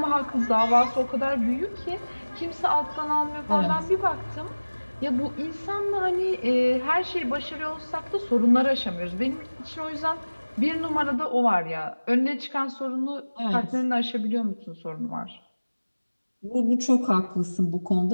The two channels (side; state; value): both; inverted; correlation -1.00